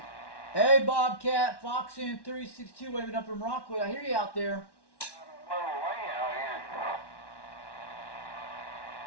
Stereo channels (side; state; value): right; late; 1.1 ms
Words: Hey, Bobcat, Foxin 362 waving up from Rockwood. I hear you out there.